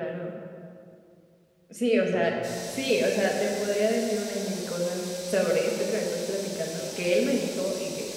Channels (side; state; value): both; identical; correlation 1.00